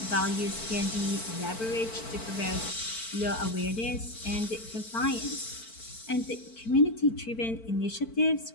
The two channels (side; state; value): right; late; 4.5 ms